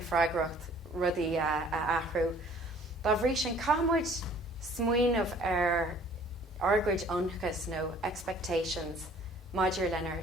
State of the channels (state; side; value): normal; both; correlation 0.54